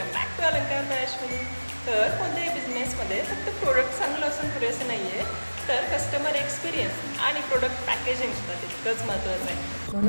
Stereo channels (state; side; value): inverted; both; correlation -1.00